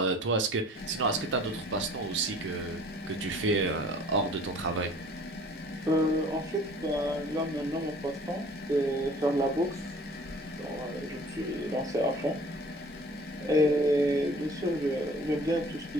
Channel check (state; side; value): normal; both; correlation 0.50